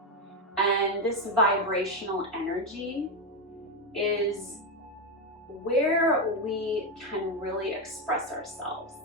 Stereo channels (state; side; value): normal; both; correlation 0.08